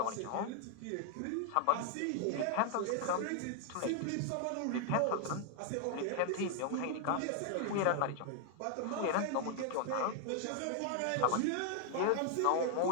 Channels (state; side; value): different; both; correlation 0.00